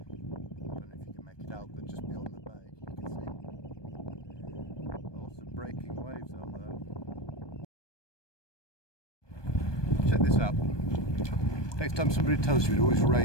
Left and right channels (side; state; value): right; late; 1.2 ms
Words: know if you can make it out, but just beyond the bay you can see lots of breaking waves out there. Check this out. Next time somebody tells you it always